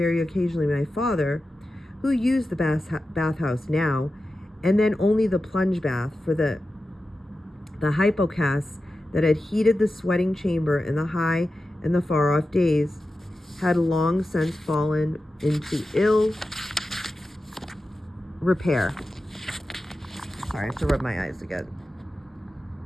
occasionally my father, who used the bathhouse now, and then only the plunge bath, for the hypocas that had heated the sweating chamber in the high and the far-off days had long since fallen into ill repair. Sorry, I have to rub my eyes again.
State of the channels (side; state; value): both; normal; correlation 0.92